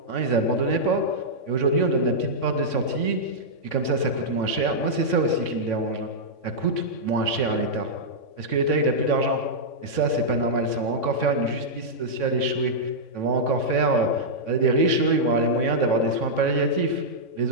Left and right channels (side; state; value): right; late; 3.6 ms